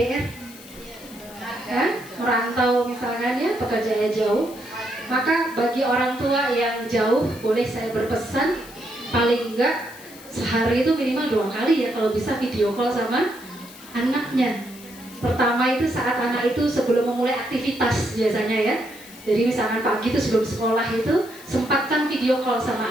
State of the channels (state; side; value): noise; left; hiss, 19 dB below the sound